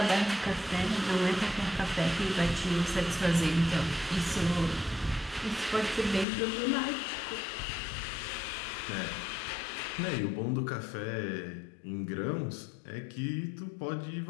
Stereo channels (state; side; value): drops out; right; at 6.2 s